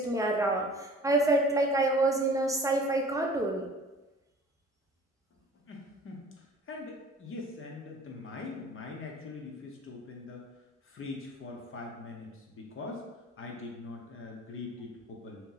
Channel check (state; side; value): normal; both; correlation 0.47